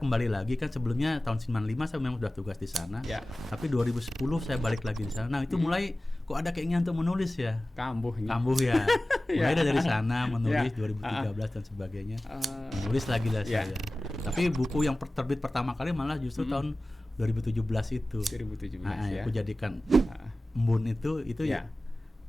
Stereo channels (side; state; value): both; normal; correlation 0.97